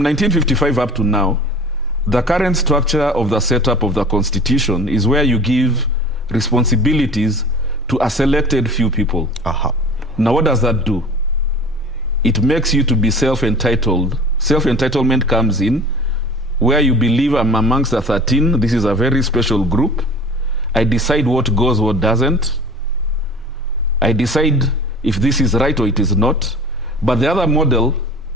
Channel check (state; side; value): normal; both; correlation 0.41